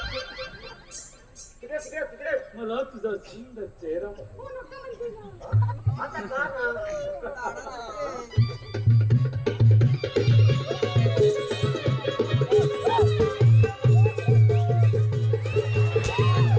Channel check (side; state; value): both; identical; correlation 1.00